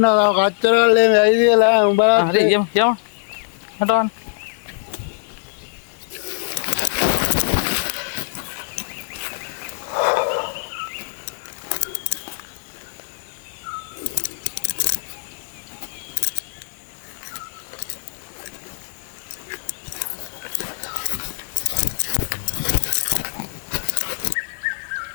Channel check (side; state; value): right; silent; digital silence